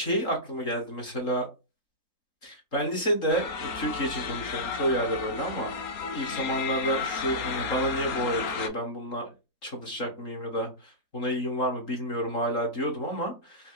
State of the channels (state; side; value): late; right; 3.8 ms